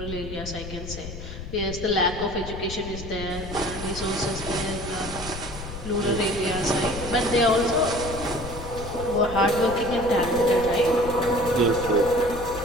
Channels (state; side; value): noise; left; rumble, 10 dB below the sound